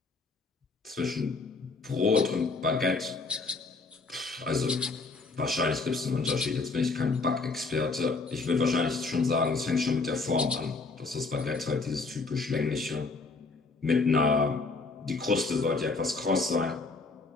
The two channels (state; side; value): quieter; right; 3.9 dB